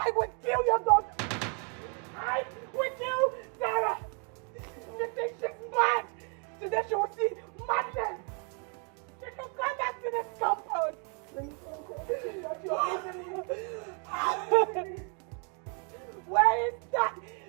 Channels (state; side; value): quieter; left; 38.8 dB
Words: will kill your daughter. I will kill Tara. You think she's mad? Today she will see madness. She can come back to this compound. Where is that